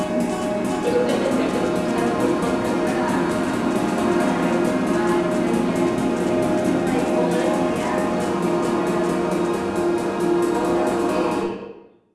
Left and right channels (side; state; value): both; identical; correlation 1.00